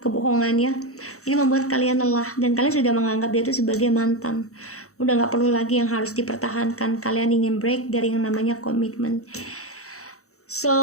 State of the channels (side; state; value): right; late; 0.64 ms